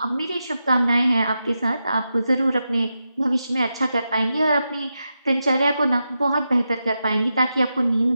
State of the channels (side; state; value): both; inverted; correlation -0.88